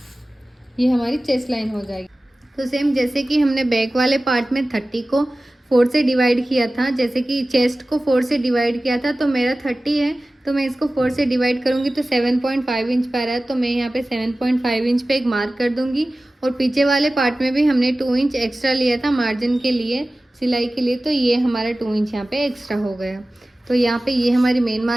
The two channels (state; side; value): normal; both; correlation 0.96